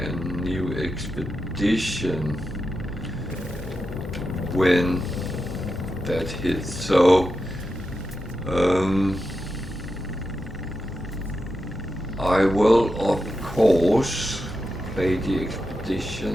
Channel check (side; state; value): both; normal; correlation 0.89